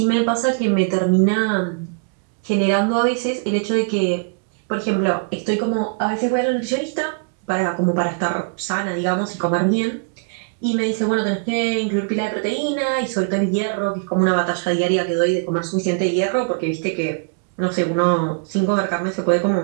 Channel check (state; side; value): quieter; left; 37.4 dB